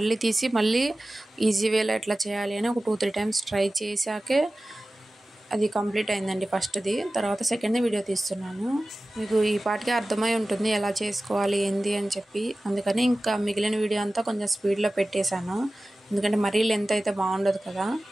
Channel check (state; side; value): normal; both; correlation 0.96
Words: తీసి మళ్ళీ ఈజీ వేలో ఎట్లా చేయాలి అని ఒక 2, 3 టైమ్స్ ట్రై చేశాకే అది కంప్లీట్ అయిందండి ఫస్ట్‌ది. తర్వాత సెకండ్‌ది వీడియో తీస్తున్నాను. మీకు ఈ పాటికే అర్థమై ఉంటుంది ఎలా చేసుకోవాలి ఏంది అని చెప్పి. అందుకని ఇంకా మిగిలిన వీడియో అంతా కొంచెం స్పీడ్‌లో పెట్టేశాను. ఎందుకంటే మరీ లెంత్ అయితే బాగుండదు కదా.